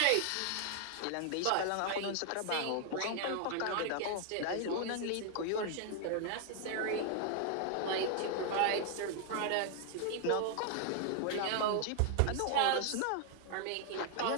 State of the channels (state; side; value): different; both; correlation 0.00